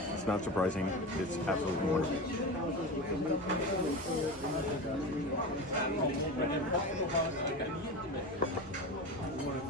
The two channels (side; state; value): both; normal; correlation 0.25